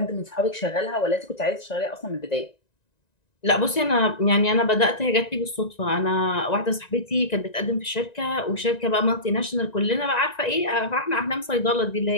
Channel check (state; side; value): late; right; 1.9 ms